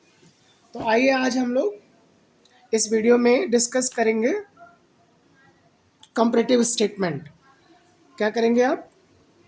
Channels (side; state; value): both; identical; correlation 1.00